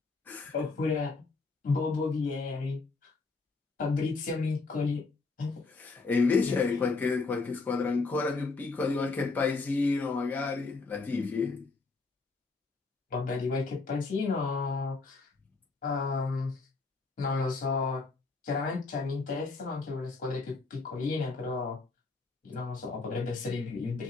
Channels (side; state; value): right; quieter; 4.0 dB